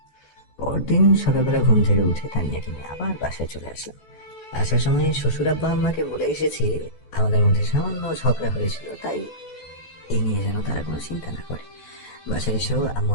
পরদিন সকালবেলা ঘুম থেকে উঠে তানিয়াকে নিয়ে আবার বাসায় চলে আসলাম। আসার সময় শ্বশুর আব্বা আম্মাকে বলে এসেছি আমাদের মধ্যে সামান্য ঝগড়া হয়েছিল, তাই এই নিয়ে যেন তারা কোনো চিন্তা না করে। বাসায় এসেও আম্মু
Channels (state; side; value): late; right; 14 ms